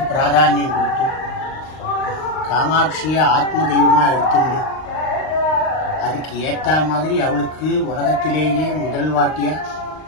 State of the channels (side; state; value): right; late; 39 ms